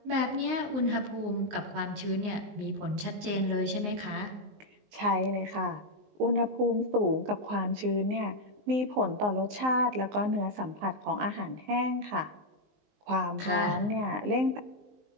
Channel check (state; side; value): late; left; 19 ms